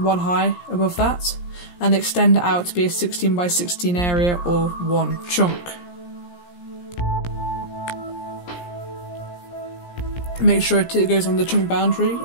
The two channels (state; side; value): late; right; 17 ms